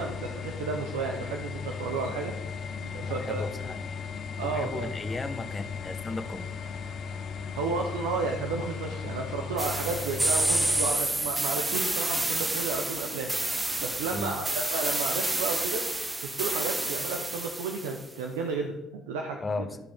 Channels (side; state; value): both; normal; correlation 0.67